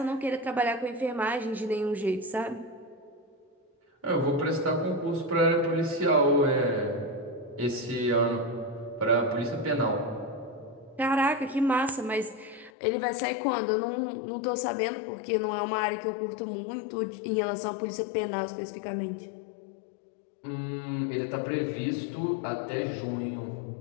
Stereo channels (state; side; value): drops out; right; at 12.7 s